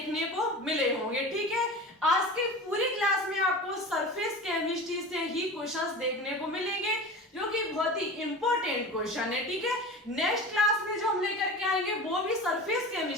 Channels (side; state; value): both; normal; correlation 0.33